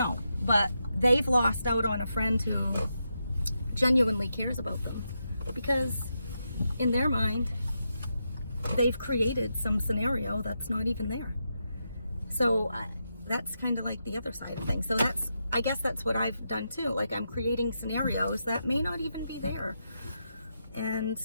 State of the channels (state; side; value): inverted; both; correlation -0.85